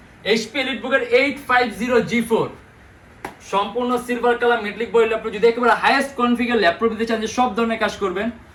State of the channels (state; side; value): identical; both; correlation 1.00